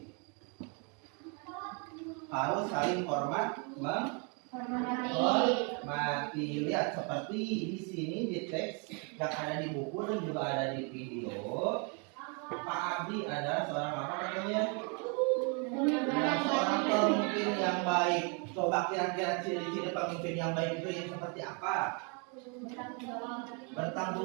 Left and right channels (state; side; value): quieter; left; 34.7 dB